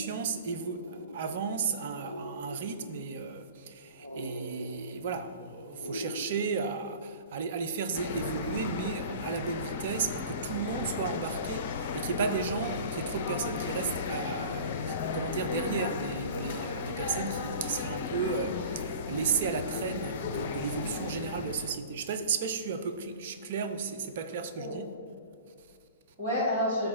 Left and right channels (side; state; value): both; inverted; correlation -0.40